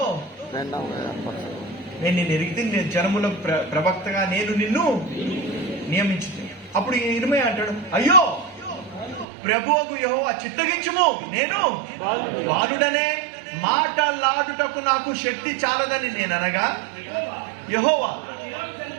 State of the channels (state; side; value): drops out; left; at 9.2 s